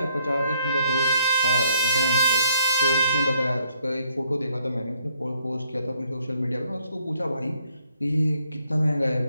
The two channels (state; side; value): inverted; both; correlation -0.69